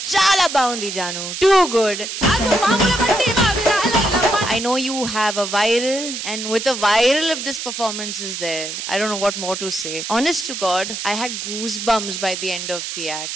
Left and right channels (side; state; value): right; noise; hiss, 6 dB below the sound